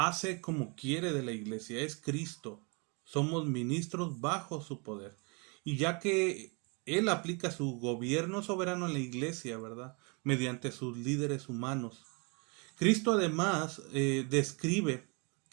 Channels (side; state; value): left; quieter; 32.7 dB